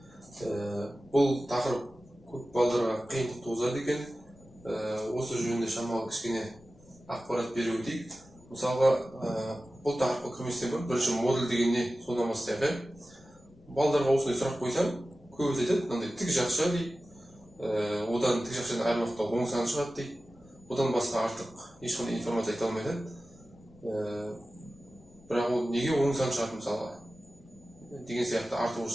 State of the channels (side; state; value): left; noise; rumble, 27 dB below the sound